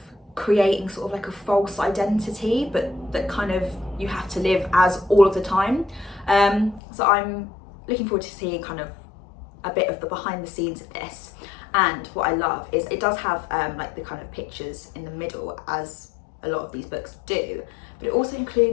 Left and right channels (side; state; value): right; drops out; at 6.8 s